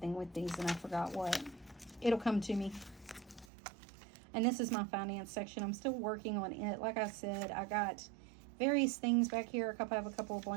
with these, and I forgot what. It'll come to me. And this is my finance section. I'm still working on it. Like I said, I got various things back here. I have a couple of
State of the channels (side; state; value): left; drops out; at 3.5 s